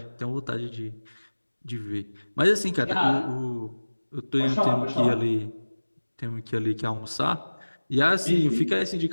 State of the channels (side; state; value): both; inverted; correlation -1.00